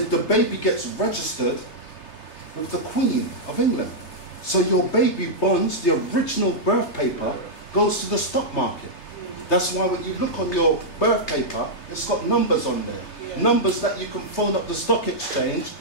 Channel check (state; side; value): late; right; 3.3 ms